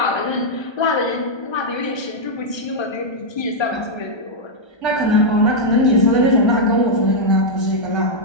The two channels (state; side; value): late; right; 1.3 ms